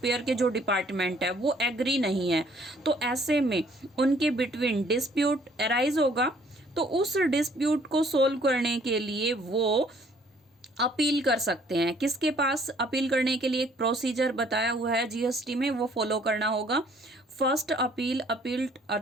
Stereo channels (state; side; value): normal; both; correlation 0.61